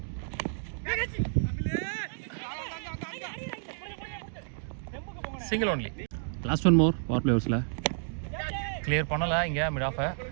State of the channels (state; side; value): silent; left; digital silence